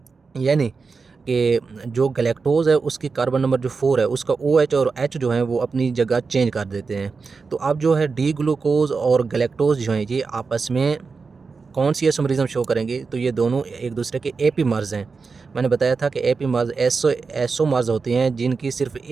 यानी कि जो गैलेक्टोज है उसकी कार्बन नंबर जो 4 है उसका OH और H जो है वो अपनी जगह चेंज कर देते हैं। तो अब जो है डी ग्लूकोज और गैलेक्टोज जो हैं ये आपस में कौन सी आइसोमरिज्म शो करेंगे। तो ये दोनों एक दूसरे के एपीमर्स हैं। मैंने बताया था कि एपीमर्स एसोमर्स होते हैं जिनकी सिर्फ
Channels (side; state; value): left; quieter; 4.7 dB